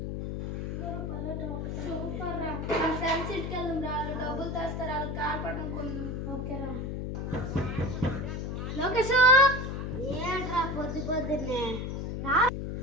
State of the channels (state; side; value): noise; left; hum, 4 dB below the sound